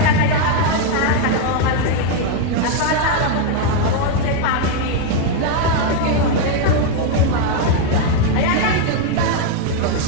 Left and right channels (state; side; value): different; both; correlation 0.01